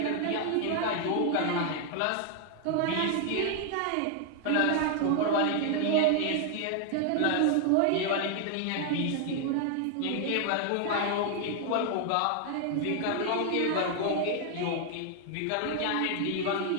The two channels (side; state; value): both; different; correlation 0.00